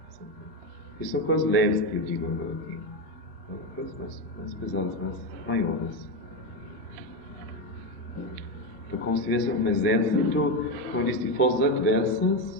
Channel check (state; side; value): normal; both; correlation 0.12